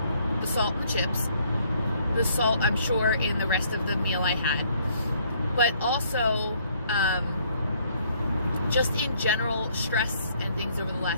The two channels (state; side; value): inverted; both; correlation -0.65